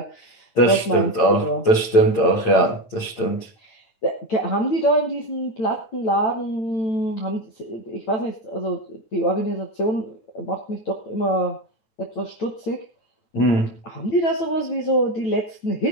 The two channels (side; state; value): right; late; 8.9 ms